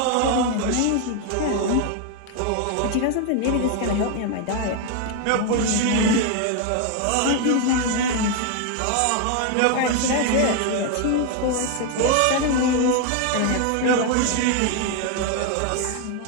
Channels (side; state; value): both; different; correlation 0.01